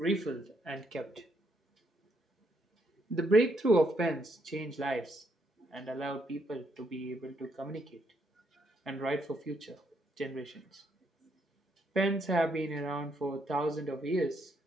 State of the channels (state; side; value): normal; both; correlation 0.74